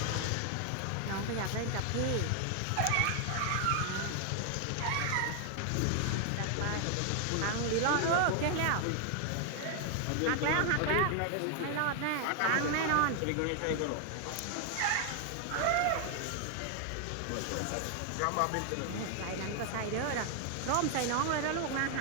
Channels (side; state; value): both; different; correlation 0.00